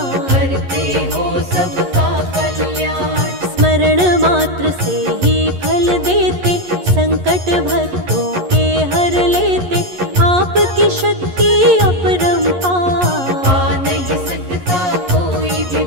करते हो सबका कल्याण। स्मरण मात्र से ही फल देते, संकट भक्तों के हर लेते, आपकी शक्ति अपरंपार, पा नहीं सकता कोई भी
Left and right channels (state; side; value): late; left; 11 ms